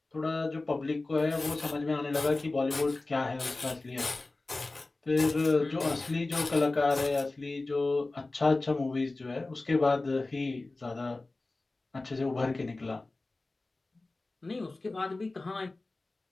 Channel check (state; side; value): quieter; right; 3.2 dB